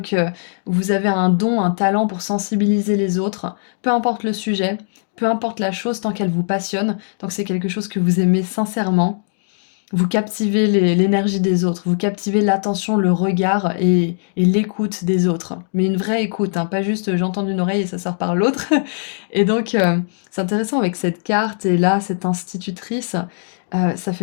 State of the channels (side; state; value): right; silent; digital silence